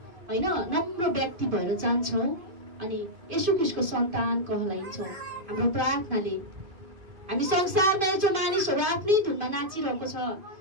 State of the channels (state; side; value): late; left; 2.5 ms